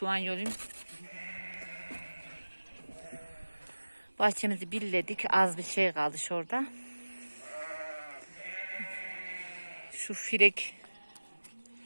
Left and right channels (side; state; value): both; inverted; correlation -1.00